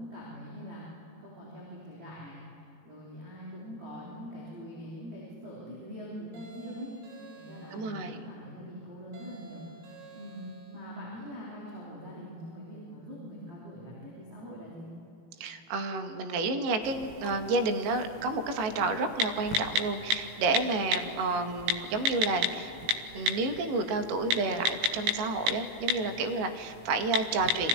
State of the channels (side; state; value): left; late; 18 ms